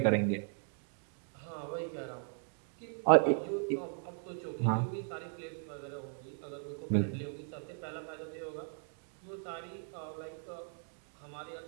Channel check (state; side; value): silent; left; 53 dB below the other